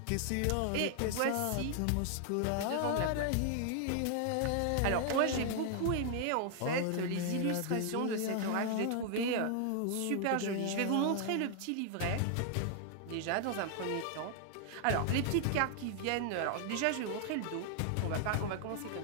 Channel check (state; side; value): different; both; correlation 0.00